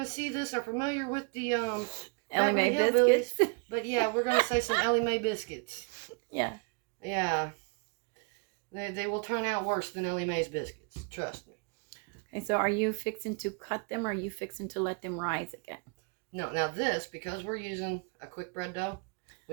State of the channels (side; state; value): left; quieter; 33.4 dB